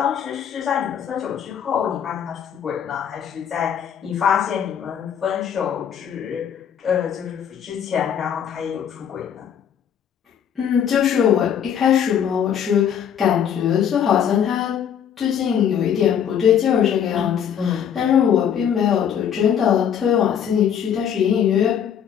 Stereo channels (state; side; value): quieter; right; 8.6 dB